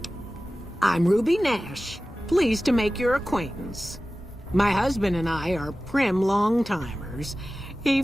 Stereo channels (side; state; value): both; normal; correlation 0.96